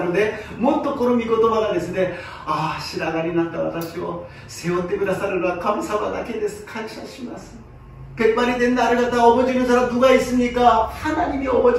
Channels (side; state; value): both; identical; correlation 1.00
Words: もっとこの御言葉がですね、ああ白髪になった私を背負ってくださるのは神様だけです。感謝します。 백발이 된 나를 갖다 업어주는 사람 누가 있습니까? 하나님이